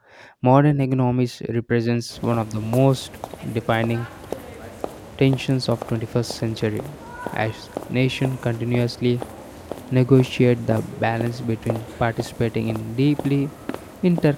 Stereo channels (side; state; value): both; identical; correlation 1.00